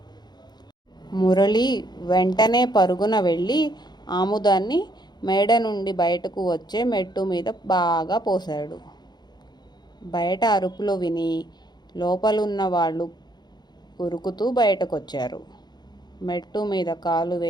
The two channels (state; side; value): late; right; 0.20 ms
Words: మురళి వెంటనే పరుగున వెళ్ళి ఆముదాన్ని మేడ నుండి బయటకు వచ్చే మెట్టు మీద బాగా పోశాడు. బయట అరుపులు విని లోపలున్న వాళ్ళు ఉరుకుతూ బయటకొచ్చారు. మెట్టు మీద కాలు